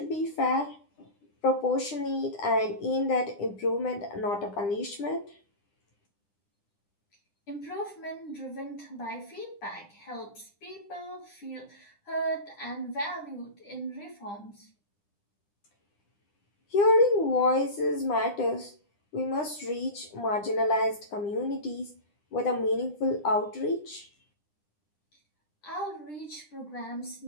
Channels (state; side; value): late; right; 9.9 ms